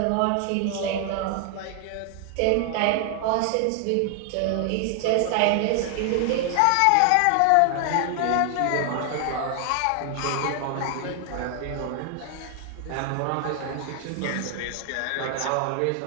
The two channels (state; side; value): different; both; correlation 0.00